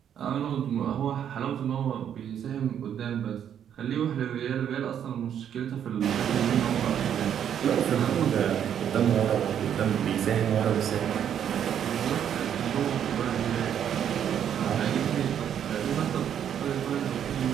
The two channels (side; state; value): left; quieter; 9.2 dB